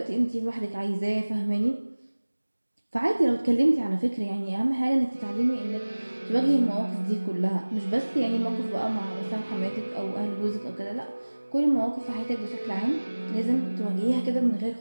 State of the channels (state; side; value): inverted; both; correlation -1.00